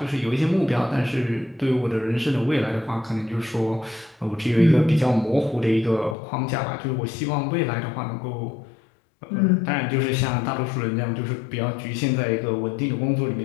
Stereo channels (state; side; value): drops out; right; at 6.2 s